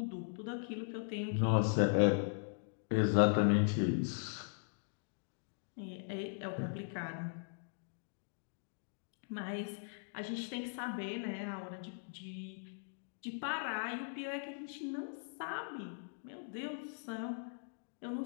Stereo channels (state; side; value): silent; right; digital silence